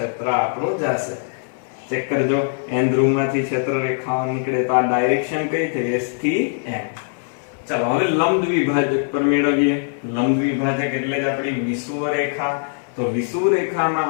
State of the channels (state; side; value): silent; right; 58 dB below the other